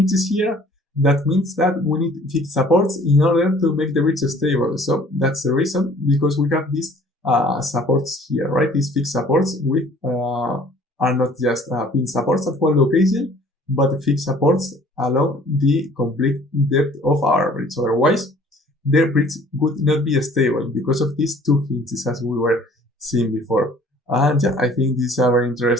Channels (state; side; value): normal; both; correlation 0.53